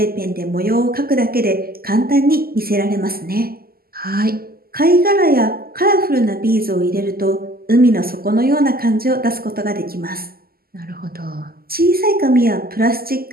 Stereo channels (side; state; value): left; late; 0.43 ms